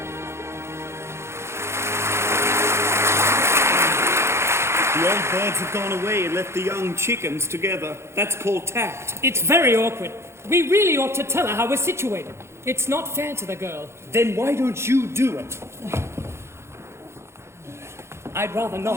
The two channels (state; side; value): late; left; 0.13 ms